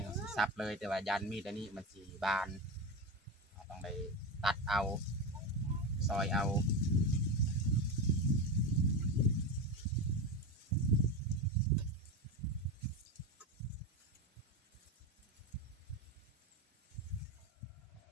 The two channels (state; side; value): normal; both; correlation 0.19